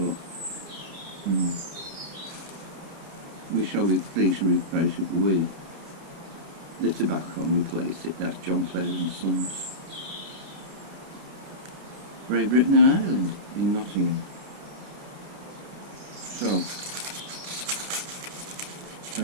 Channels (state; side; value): late; left; 29 ms